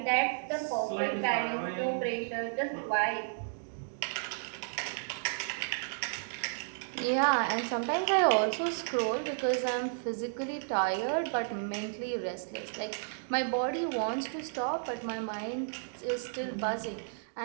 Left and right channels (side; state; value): left; silent; digital silence